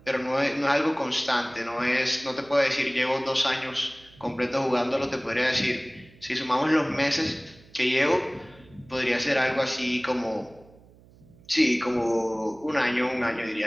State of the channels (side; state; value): right; noise; hum, 26 dB below the sound